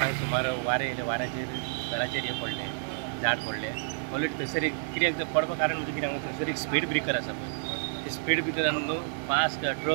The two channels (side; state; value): left; silent; digital silence